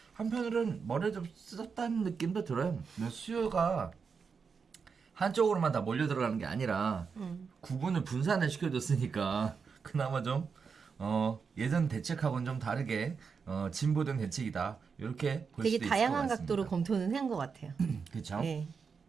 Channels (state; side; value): quieter; left; 5.6 dB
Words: 한편으로는 머리를 좀 쓰었다는 느낌도 들어요. 수요가 한쪽으로만 다 몰려 들어가는 게 아니라 구분을 분산을 시켜줬으니까 그나마 좀 예전 대책하고는 좀 다르게 진보된 대책이다. 이렇게 볼 되게 수도 있을 것 다양한 같습니다. 각도로 검토는 한 것 같아요. 그렇죠. 네.